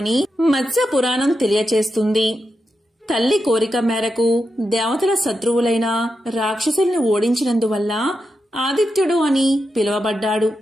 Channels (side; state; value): both; normal; correlation 0.87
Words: మత్స్య పురాణం తెలియచేస్తుంది. తల్లి కోరిక మేరకు దేవతల శత్రువులైన రాక్షసుల్ని ఓడించినందువల్ల ఆదిత్యుడు అని పిలువబడ్డాడు.